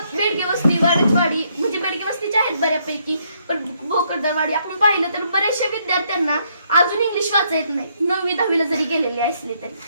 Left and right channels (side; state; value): both; inverted; correlation -0.72